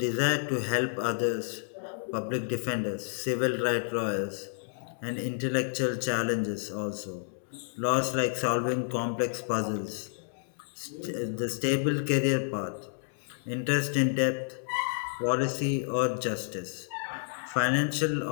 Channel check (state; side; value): silent; right; digital silence